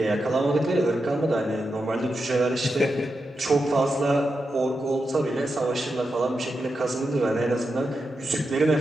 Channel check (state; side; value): normal; both; correlation 0.88